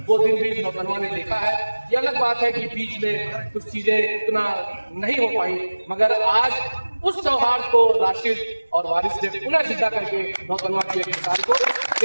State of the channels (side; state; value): both; inverted; correlation -1.00